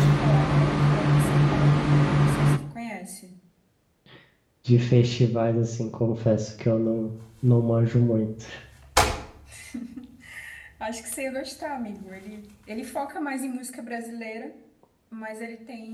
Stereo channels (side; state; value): both; identical; correlation 1.00